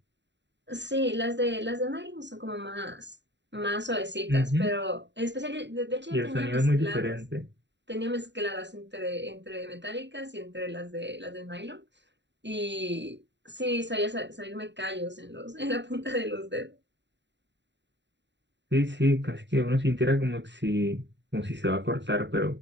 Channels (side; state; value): left; late; 0.52 ms